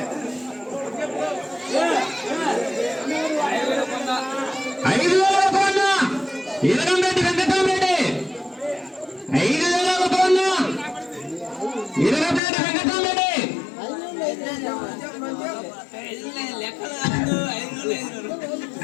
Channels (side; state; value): right; drops out; at 12.4 s